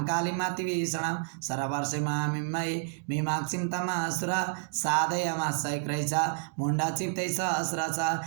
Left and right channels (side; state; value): left; silent; 58 dB below the other